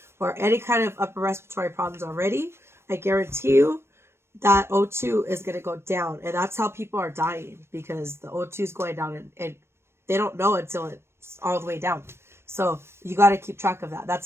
or any kind of upper respiratory problems already, I guarantee you, that O2 is going to go down. And that's how people are dying, because the O2 is going down and they don't know until it's all the way down. So you got to keep track of that.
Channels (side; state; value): left; late; 0.12 ms